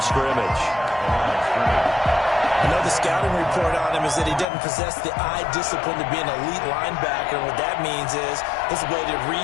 scrimmage. I know the scouting report on him is that he doesn't possess the eye discipline to be an elite linebacker. And what that means is his ability to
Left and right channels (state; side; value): drops out; right; at 4.5 s